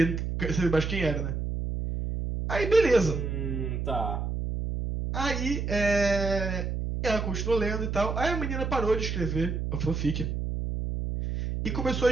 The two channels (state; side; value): noise; right; hum, 2 dB below the sound